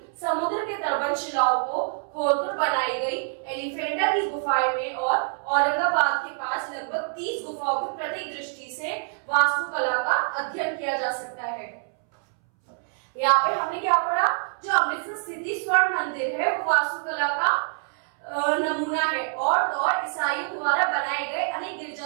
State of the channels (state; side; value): silent; left; 61 dB below the other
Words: समुद्र के तटबंध शिलाओं को खोदकर बनाई गई एलिफेंटा की गुफाएं में और औरंगाबाद के पास लगभग 30 गुफाओं की प्रत्येक दृष्टि से वास्तुकला का अध्ययन किया जा सकता है। यहाँ पे हमने क्या पढ़ा, जो अमृतसर स्थित स्वर्ण मंदिर है वो वास्तुकला का नमूना है। और ईसाइयों द्वारा बनाए गए अनेक